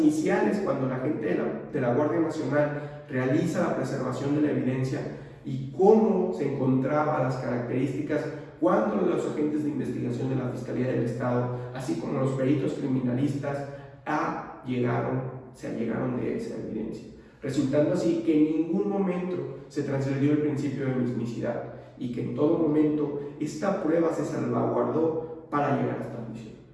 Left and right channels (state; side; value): identical; both; correlation 1.00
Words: cuando la gente de la Guardia Nacional realiza la preservación de la evidencia y cómo se encontraban las características cuando los agentes de investigación de la Fiscalía del Estado, así como los peritos criminalistas, se allegaron de esa evidencia, resultando así que en ningún momento se transgredió el principio de mismicidad y que en todo momento esta prueba se salvaguardó para llegar hasta la juicio.